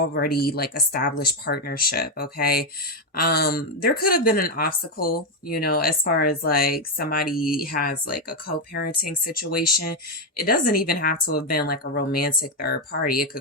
like established partnership. Okay. There could have been an obstacle, you know, as far as like somebody has like a co-parenting situation. It doesn't even have to have been like a romantic third party. It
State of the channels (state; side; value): normal; both; correlation 0.06